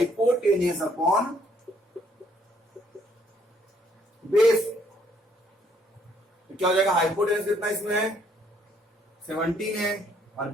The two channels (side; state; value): both; normal; correlation 0.67